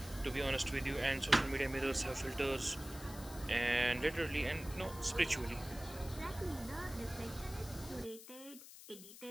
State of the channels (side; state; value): left; noise; hiss, 15 dB below the sound